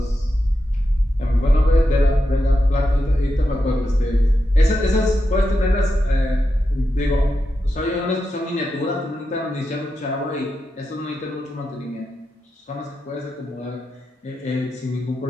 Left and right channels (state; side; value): normal; both; correlation 0.88